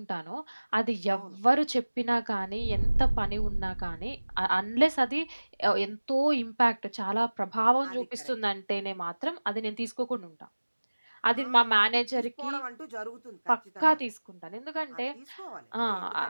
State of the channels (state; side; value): inverted; both; correlation -1.00